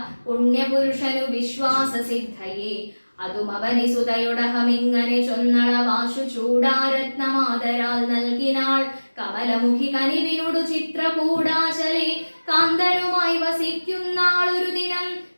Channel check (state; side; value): inverted; both; correlation -1.00